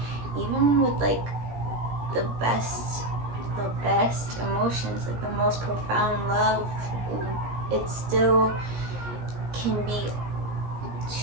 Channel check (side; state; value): left; late; 17 ms